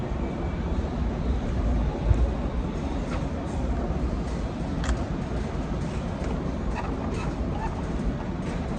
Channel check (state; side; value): identical; both; correlation 1.00